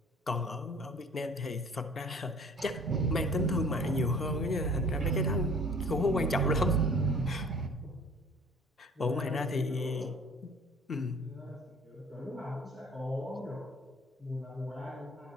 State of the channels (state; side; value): normal; both; correlation 0.49